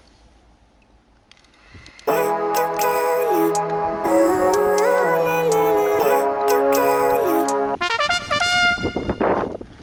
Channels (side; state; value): both; identical; correlation 1.00